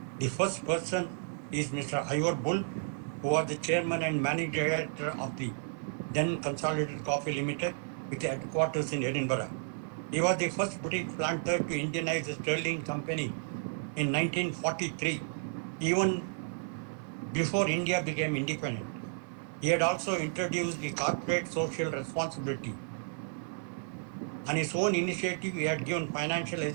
The first person is Mr. Ivor Bull, who was the chairman and managing director of the then Consolidated Coffee Limited with headquarters in Edinburgh. He was the first British planter to Indianize the Sterling Company in 1943, even before India became independent. He had also introduced the corporate social responsibility. On his own initiative, he had given financial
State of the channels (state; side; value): silent; left; 56 dB below the other